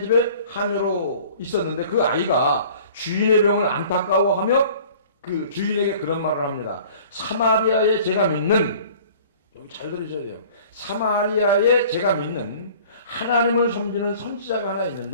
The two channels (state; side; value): inverted; both; correlation -0.48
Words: 집에 하녀로 있었는데 그 아이가 주인의 병을 안타까워하며 그 주인에게 그런 말을 합니다. 사마리아에 제가 믿는, 여기 잘 들으셔야 돼요. 사마리아에 제가 믿는 하나님을 섬기는 선지자가 하나